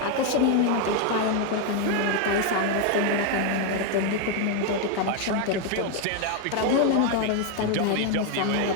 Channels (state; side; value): different; both; correlation 0.01